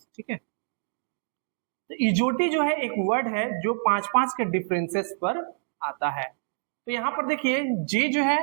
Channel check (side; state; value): left; silent; digital silence